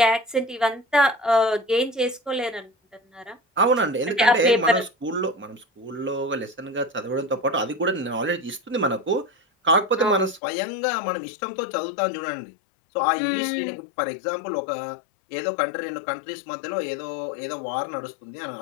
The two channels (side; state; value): right; drops out; at 10.4 s